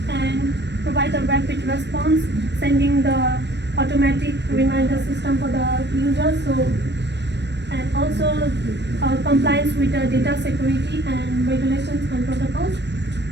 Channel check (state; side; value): late; left; 0.50 ms